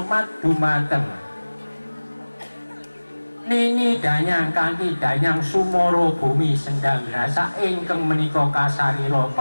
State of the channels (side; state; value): both; inverted; correlation -1.00